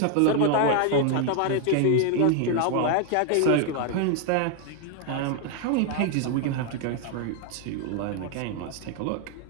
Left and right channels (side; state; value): both; different; correlation 0.00